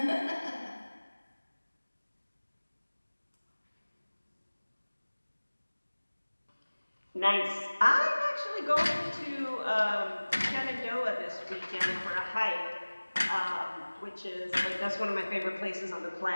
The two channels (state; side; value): inverted; both; correlation -1.00